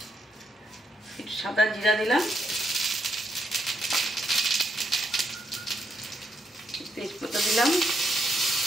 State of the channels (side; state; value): both; normal; correlation 0.78